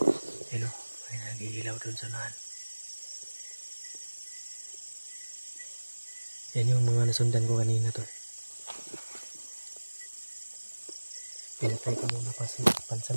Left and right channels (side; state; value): both; inverted; correlation -1.00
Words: ano, may nag-iilaw dun sa unahan. Yan yung mga nasundan ko kanina tol. Pinatay ko muna